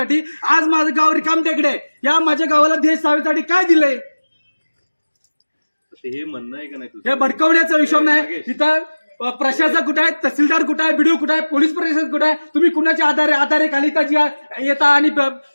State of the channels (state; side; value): inverted; both; correlation -1.00